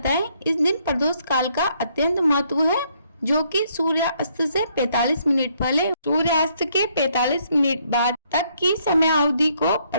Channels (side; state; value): both; inverted; correlation -0.70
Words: है। इस दिन प्रदोष काल का अत्यंत महत्व है, जो कि सूर्यास्त से 45 मिनट पहले सूर्यास्त के 45 मिनट बाद तक की समय अवधि को